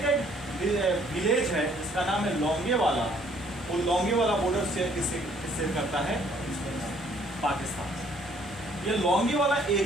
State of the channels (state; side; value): normal; both; correlation 0.61